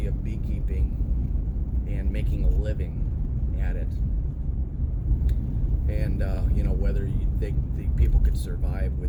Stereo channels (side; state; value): both; identical; correlation 1.00